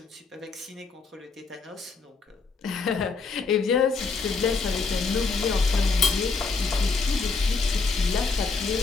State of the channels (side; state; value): right; quieter; 4.4 dB